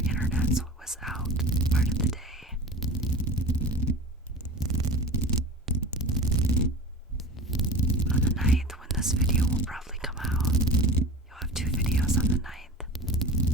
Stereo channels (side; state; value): both; normal; correlation 0.33